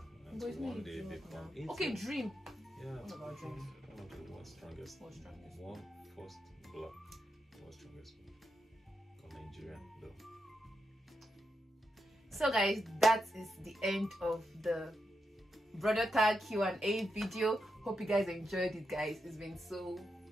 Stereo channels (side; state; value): both; normal; correlation 0.85